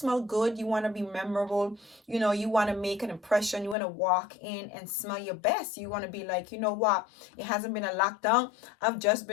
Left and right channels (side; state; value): right; drops out; at 3.8 s